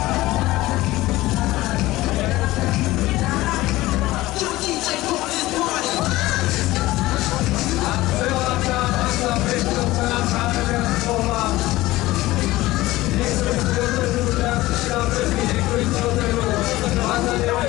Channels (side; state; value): right; quieter; 18.0 dB